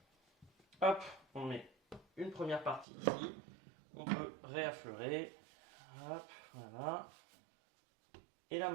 Hop, on met une première partie ici. On peut réaffleurer. Hop, voilà. Et là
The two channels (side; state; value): left; drops out; at 2.9 s